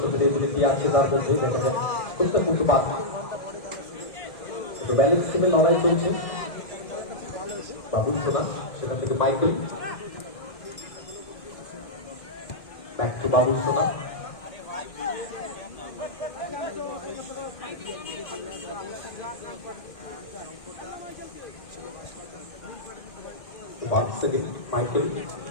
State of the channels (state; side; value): late; right; 1.6 ms